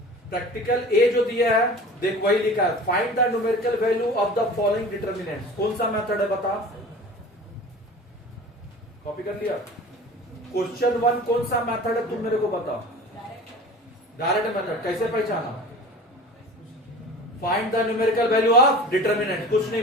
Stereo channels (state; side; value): normal; both; correlation 0.38